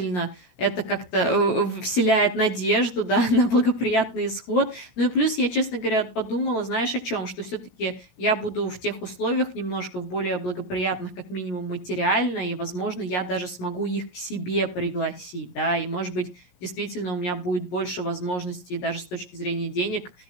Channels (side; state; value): right; late; 17 ms